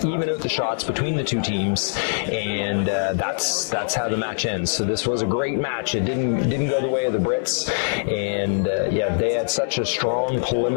out the shots between the two teams, and that's how the match ends. So this was a great match. It didn't go the way of the Brits, and they had such a strong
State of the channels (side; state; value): right; silent; digital silence